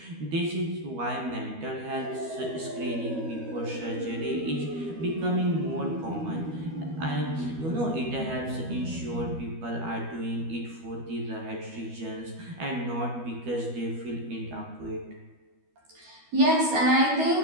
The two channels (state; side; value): late; left; 12 ms